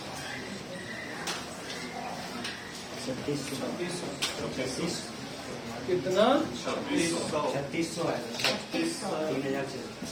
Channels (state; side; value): identical; both; correlation 1.00